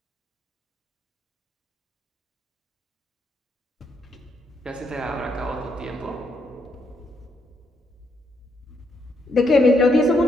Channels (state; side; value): normal; both; correlation 0.76